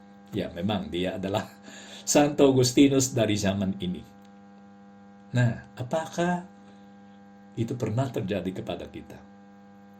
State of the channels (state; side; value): identical; both; correlation 1.00